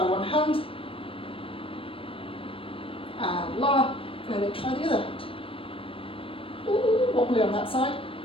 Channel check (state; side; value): late; right; 0.26 ms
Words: one hand. And lower. And then try the other hand. Ooh, wobbly on that side.